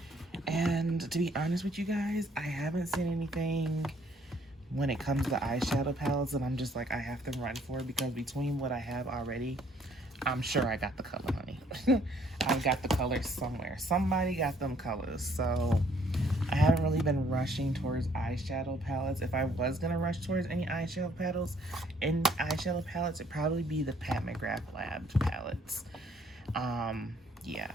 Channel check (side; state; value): both; normal; correlation 0.64